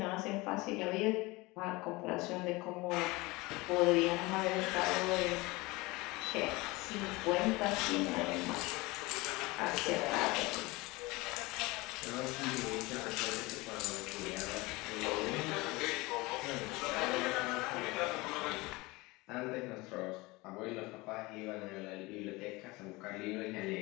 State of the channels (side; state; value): right; quieter; 22.8 dB